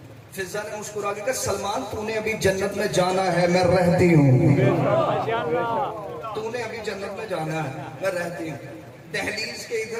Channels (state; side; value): identical; both; correlation 1.00